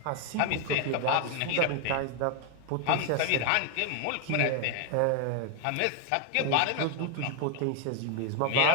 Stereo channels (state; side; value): different; both; correlation 0.00